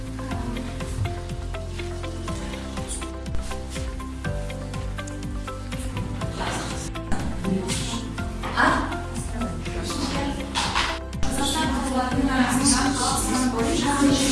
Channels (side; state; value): both; identical; correlation 1.00